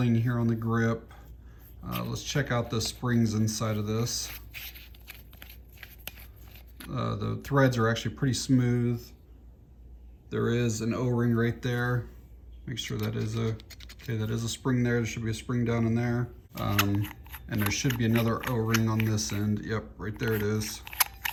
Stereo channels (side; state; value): both; identical; correlation 1.00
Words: here on the grip. Let's check out the springs inside of this. The threads are actually pretty smooth. There is an O-ring right there. Make sure that is a spring there. There should be a spring down in there. And there should be another O-ring on this end. Yep, right there it is.